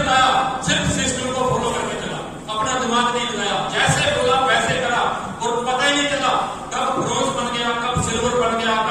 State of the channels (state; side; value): identical; both; correlation 1.00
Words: सिर्फ सिस्टम को फॉलो करके चला, अपना दिमाग नहीं लगाया, जैसे बोला वैसे करा, और पता ही नहीं चला कब ब्रोंज बन गया, कब सिल्वर बन गया,